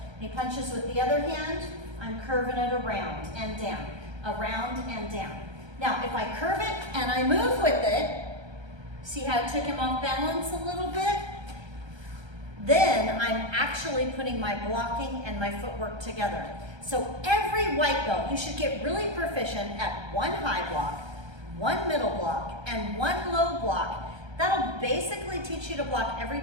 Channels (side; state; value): left; late; 1.3 ms